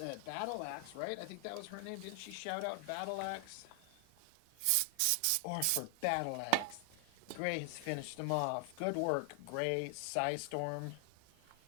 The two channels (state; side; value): different; both; correlation 0.00